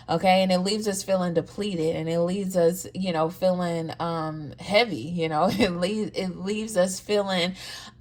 Okay, and it leaves us feeling depleted, and it leaves us, you know, feeling heavy, you know, it leaves us feeling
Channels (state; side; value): identical; both; correlation 1.00